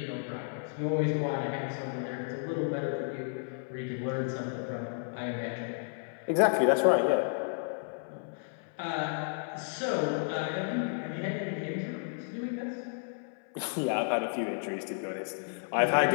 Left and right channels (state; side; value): silent; right; 56 dB below the other